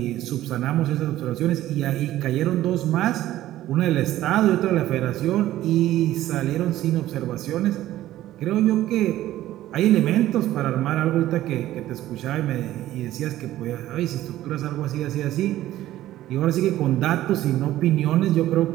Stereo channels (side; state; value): left; quieter; 14.3 dB